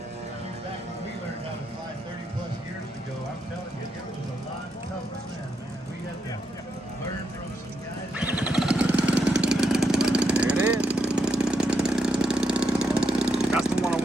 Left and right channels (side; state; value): both; normal; correlation 0.81